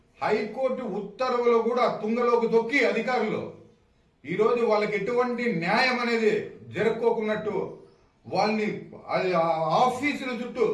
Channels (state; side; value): identical; both; correlation 1.00